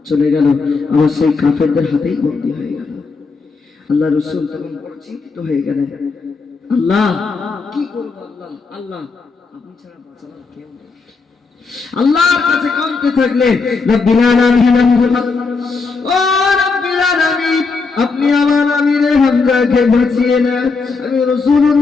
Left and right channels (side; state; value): right; quieter; 4.4 dB